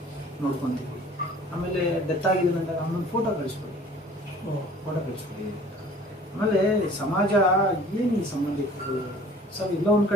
ನೋಡ್ಕೊತೀವಿ, ಆಮೇಲೆ ಡೆತ್ ಆಗಿದೆ ಅಂದಾಗ ಅವನೊಂದು ಫೋಟೋ ಕಳಿಸ್ಕೊಡಿ. ಆಮೇಲೆ ಸಮಾಜ ಏನು ಈ ಸಂಬಂಧಿಕರು ಸರ್, ಇಲ್ಲ ಒಂದು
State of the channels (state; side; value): normal; both; correlation 0.49